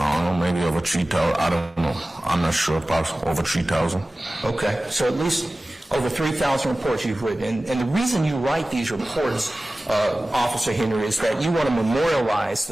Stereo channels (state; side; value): normal; both; correlation 0.97